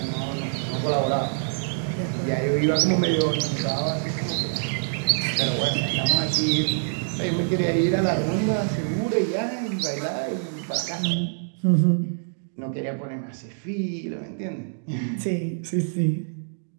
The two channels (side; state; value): left; silent; digital silence